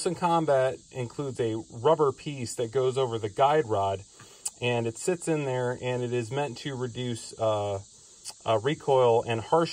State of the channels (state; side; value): identical; both; correlation 1.00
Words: Combat includes a rubber piece that goes over the guide rod, and it sits in there, and it is meant to reduce recoil and